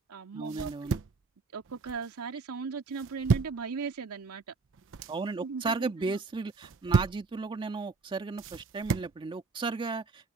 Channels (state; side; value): quieter; left; 4.3 dB